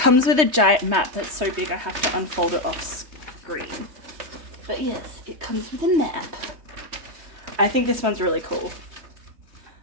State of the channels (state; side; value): late; left; 3.2 ms